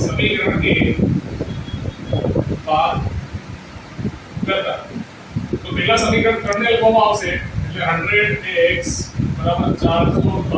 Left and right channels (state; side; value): identical; both; correlation 1.00